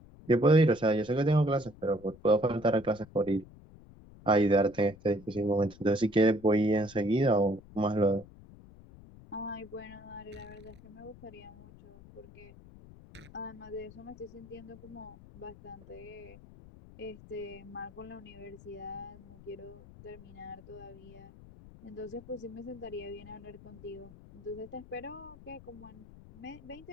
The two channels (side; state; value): left; noise; rumble, 20 dB below the sound